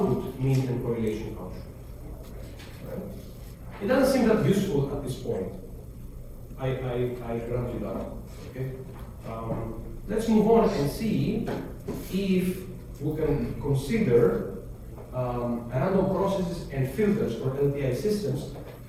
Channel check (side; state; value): both; identical; correlation 1.00